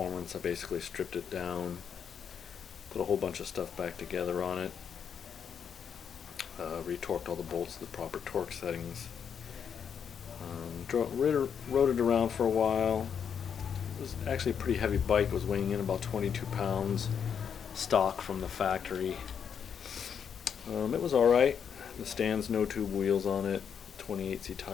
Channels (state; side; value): quieter; right; 7.5 dB